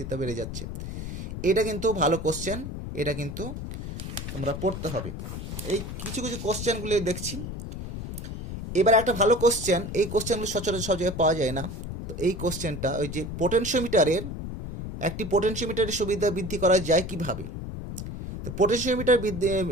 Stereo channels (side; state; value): left; noise; rumble, 7 dB below the sound